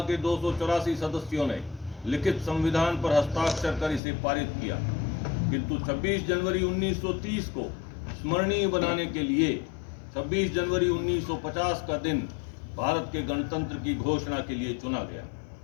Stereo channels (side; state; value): right; drops out; at 4.0 s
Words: के 284 सदस्यों ने लिखित संविधान पर हस्ताक्षर कर इसे पारित किया, किंतु 26 जनवरी 1930 को स्मरणीय बनाने के लिए 26 जनवरी 1950 का दिन भारत के गणतंत्र की घोषणा के लिए चुना गया।